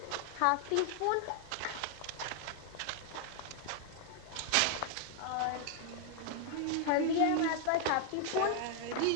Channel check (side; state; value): both; different; correlation 0.00